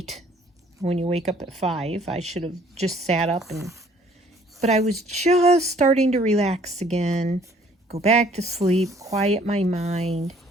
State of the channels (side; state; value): both; normal; correlation 0.59